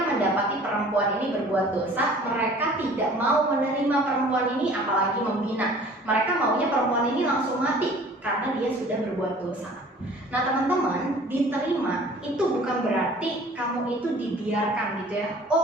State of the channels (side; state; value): both; normal; correlation 0.49